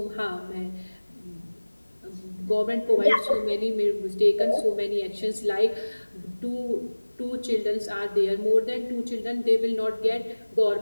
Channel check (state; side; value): inverted; both; correlation -1.00